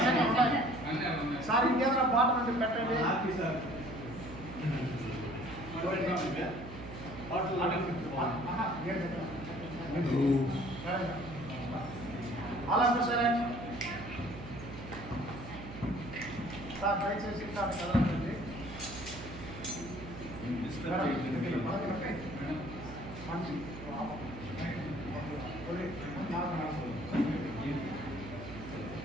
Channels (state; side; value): noise; right; hum, 12 dB below the sound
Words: సార్. ఇంకేదైనా బాటలు ఉంటే పెట్టండి. అలా సరే సార్, దయచేసి కదలండి.